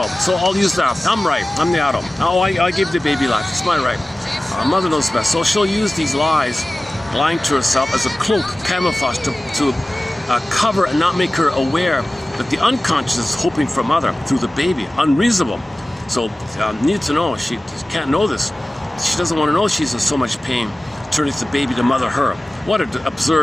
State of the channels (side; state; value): both; normal; correlation 0.97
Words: So I'll use that. I'm right, I'm the adult. Oh, I gave the baby life, it's my right. Mother knows best. So she'll use these lies, lying to herself as a cloak, camouflage to cover and not make her aware that the unconscious is hoping for mother through the baby. Unreasonable. So need to know, she can't know this. She doesn't want to know she's in so much pain, turning the baby to mother her. What an